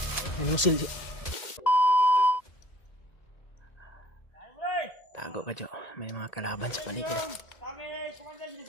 May nusul siya. Tago ka, Jo. May mga kalaban sa paligid. Kami kumandan dito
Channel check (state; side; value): late; right; 2.0 ms